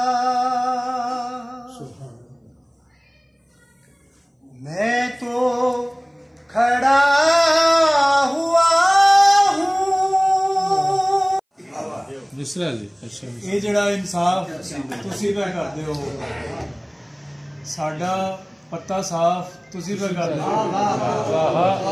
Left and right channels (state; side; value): identical; both; correlation 1.00